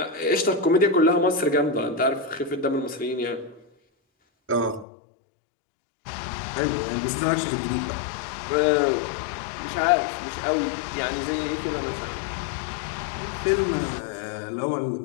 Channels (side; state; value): right; drops out; at 4.9 s